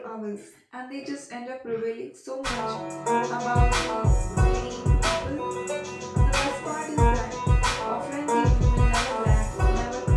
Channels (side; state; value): both; identical; correlation 1.00